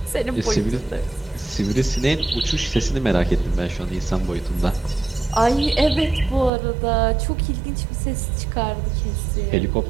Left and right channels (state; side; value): drops out; left; at 6.5 s